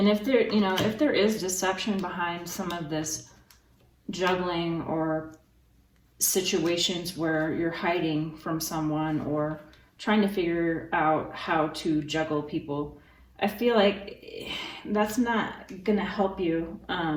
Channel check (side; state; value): both; identical; correlation 1.00